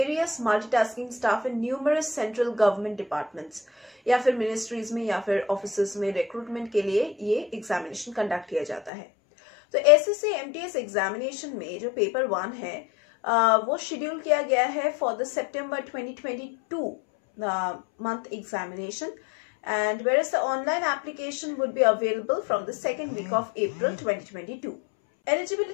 multitasking staff in numerous central government departments, या फिर मिनिस्ट्रीज में या फिर ऑफिसेज में रिक्रूटमेंट के लिए ये एग्जामिनेशन कंडक्ट किया जाता है। तो SSC MTS एग्जामिनेशन में जो पेपर 1 है वो शेड्यूल किया गया है for the September 2022 month examination, and whereas the online application would be available from the second week of April 2022.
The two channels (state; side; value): drops out; right; at 8.9 s